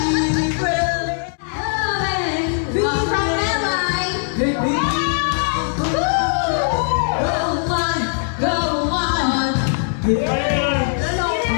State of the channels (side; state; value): right; silent; 66 dB below the other